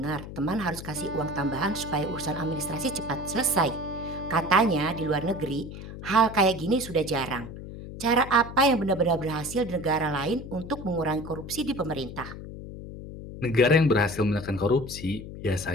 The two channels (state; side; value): noise; left; hum, 11 dB below the sound